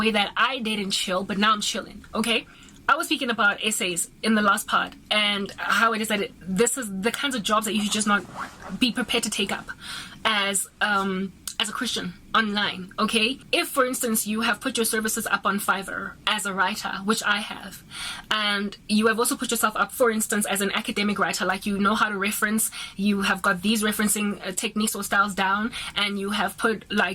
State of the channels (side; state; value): both; identical; correlation 1.00